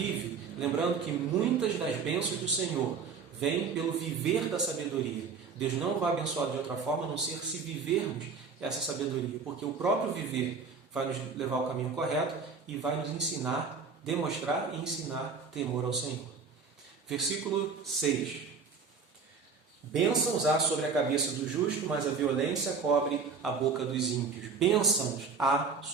lembrando que muitas das bênçãos do Senhor vêm pelo viver da sabedoria. Deus não vai abençoar de outra forma, a não ser se vivermos essa sabedoria, porque o próprio viver vai nos levar ao caminho correto e vai nos ensinar, demonstrar e ensinar temor ao Senhor. Versículo 6. Bênçãos há sobre a cabeça do justo, mas a violência cobre a boca dos ímpios. Bênçãos há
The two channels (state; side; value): quieter; left; 5.3 dB